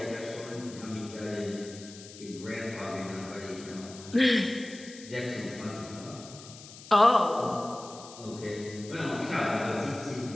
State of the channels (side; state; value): left; noise; hiss, 16 dB below the sound